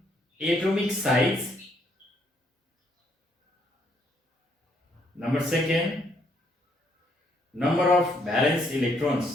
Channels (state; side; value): normal; both; correlation 0.71